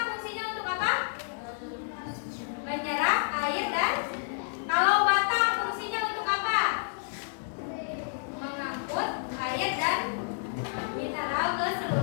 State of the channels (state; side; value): silent; right; 58 dB below the other